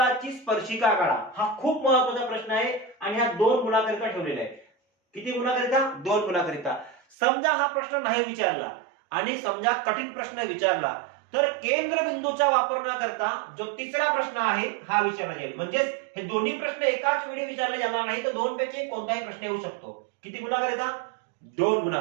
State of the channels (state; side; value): drops out; left; at 7.2 s